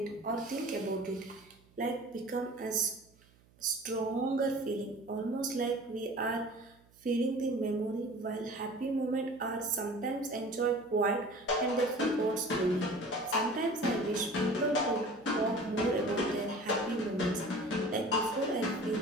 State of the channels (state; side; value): noise; right; hum, 30 dB below the sound